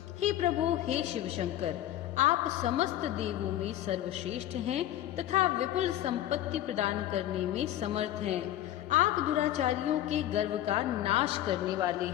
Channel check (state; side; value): quieter; right; 13.1 dB